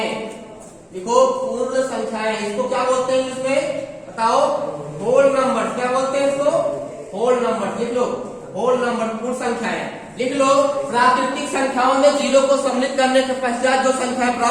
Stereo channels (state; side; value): identical; both; correlation 1.00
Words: लिखो पूर्ण संख्याएं। इसको क्या बोलते हैं इसमें? बताओ। Whole number. क्या बोलते हैं इसको? Whole number. लिख लो होल नंबर, पूर्ण संख्याएं लिख लो। प्राकृतिक संख्याओं में 0 को सम्मिलित करने के पश्चात जो संख्याएं